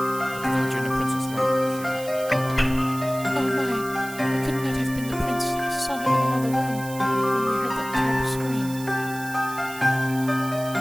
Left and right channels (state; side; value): noise; right; hiss, 14 dB below the sound